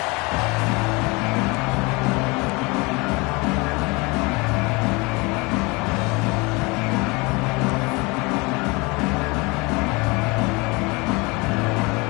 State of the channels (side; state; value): right; quieter; 26.4 dB